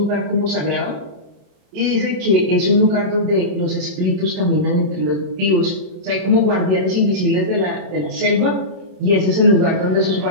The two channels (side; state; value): left; late; 27 ms